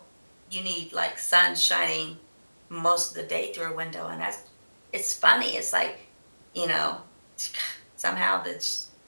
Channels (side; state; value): both; inverted; correlation -1.00